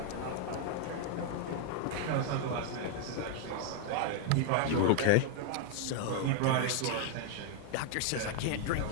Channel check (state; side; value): different; both; correlation 0.00